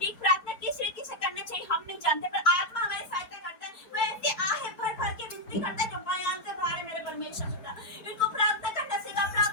प्रार्थना किस रीति से करना चाहिए हम नहीं जानते, पर आत्मा हमारी सहायता करता है। वो ऐसे आहे भर भर के विनती करता है जो बयान से बाहर है मेरे परमेश्वर पिता। इनको प्रार्थना करना सीखा।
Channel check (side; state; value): right; late; 4.6 ms